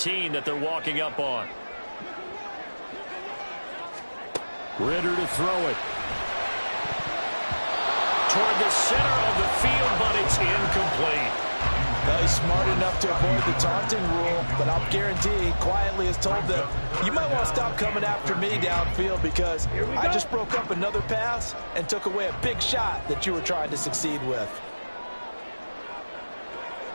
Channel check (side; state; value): both; inverted; correlation -1.00